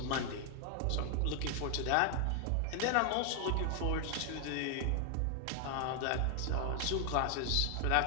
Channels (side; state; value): both; different; correlation 0.00